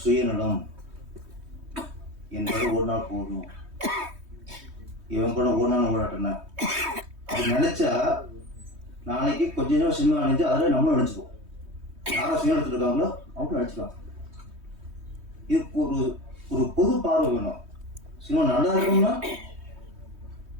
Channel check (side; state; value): left; late; 3.2 ms